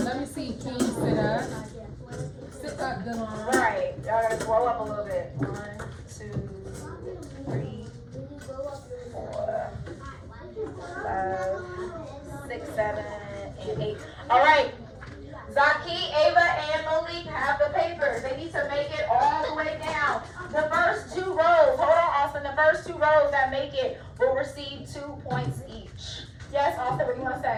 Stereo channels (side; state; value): both; identical; correlation 1.00